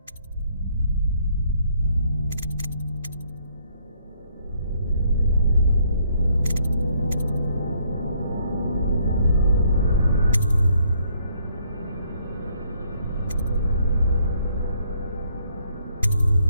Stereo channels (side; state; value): both; inverted; correlation -0.68